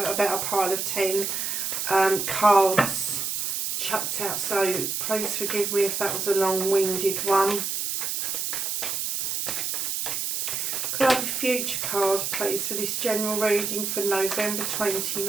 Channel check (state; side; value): noise; right; hiss, 1 dB below the sound